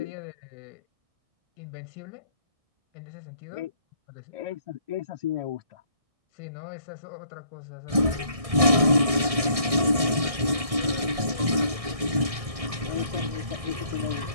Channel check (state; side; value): late; left; 1.6 ms